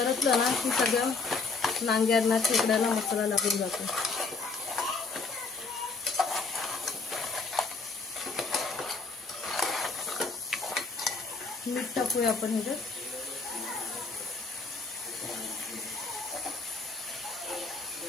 ना की सगळ्या नांग्यांना खेकड्यांना मसाला लागून जातो. मीठ टाकूया आपण ह्याच्यात.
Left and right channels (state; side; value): quieter; right; 4.2 dB